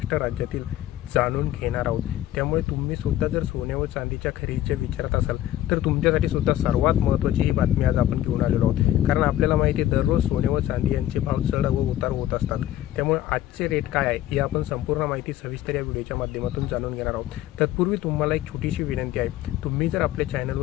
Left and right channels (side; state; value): right; quieter; 13.3 dB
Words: राज्यातील जाणून घेणार आहोत. त्यामुळे तुम्ही सुद्धा जर सोने व चांदीच्या खरेदीच्या विचारात असाल तर तुमच्यासाठी सुद्धा सर्वात महत्त्वाची ही बातमी आज आपण घेऊन आलेलो आहोत. कारण आपल्याला माहिती आहे दररोज सोने व चांदी यांचे भाव चढ व उतार होत असतात. त्यामुळे आजचे रेट काय आहे ही आपण संपूर्ण माहिती सविस्तर या व्हिडिओच्या माध्यमातून जाणून घेणार आहोत. तत्पूर्वी तुम्हाला एक छोटीशी विनंती आहे, तुम्ही जर आपल्या